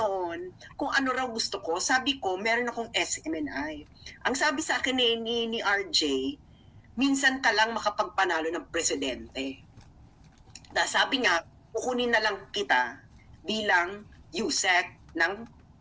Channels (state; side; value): identical; both; correlation 1.00